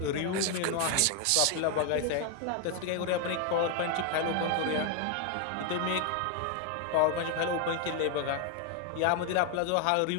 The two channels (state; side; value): different; both; correlation 0.01